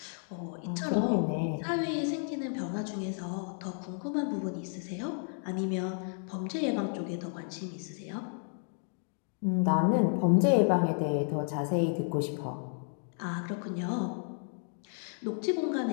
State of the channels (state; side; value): silent; right; 56 dB below the other